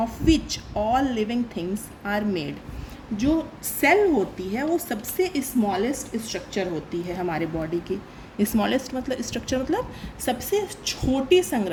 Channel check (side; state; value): both; identical; correlation 1.00